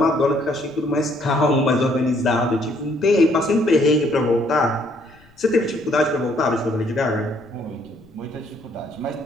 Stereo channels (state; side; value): noise; left; rumble, 28 dB below the sound